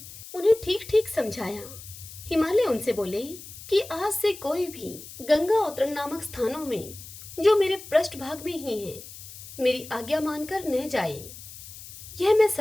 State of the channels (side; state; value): left; noise; hiss, 15 dB below the sound